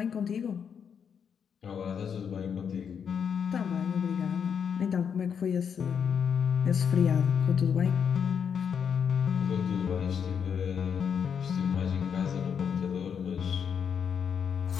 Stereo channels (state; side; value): quieter; right; 7.3 dB